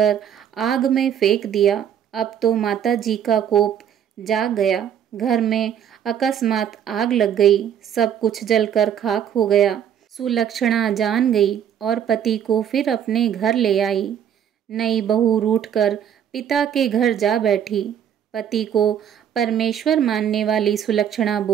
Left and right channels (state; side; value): quieter; left; 9.2 dB